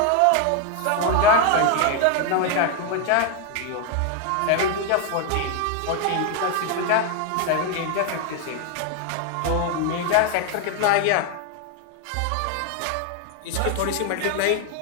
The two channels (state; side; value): different; both; correlation 0.01